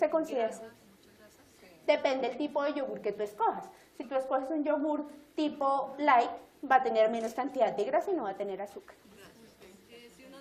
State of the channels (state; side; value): identical; both; correlation 1.00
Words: considera. Depende del tipo de yogur que tú escojas. Si tú escoges un yogur tipo light, va a tener menos cantidad de grasa y no va a tener azúcar. Si uno